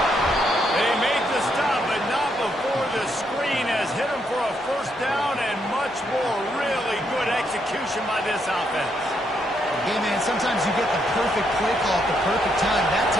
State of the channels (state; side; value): normal; both; correlation 0.76